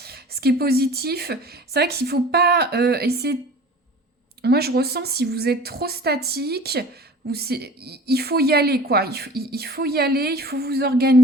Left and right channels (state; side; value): normal; both; correlation 0.42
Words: Ce qui est positif, c'est vrai qu'il ne faut pas essayer... Moi, je ressens si vous êtes trop statique, il faut y aller, quoi. Il faut y aller, il faut vous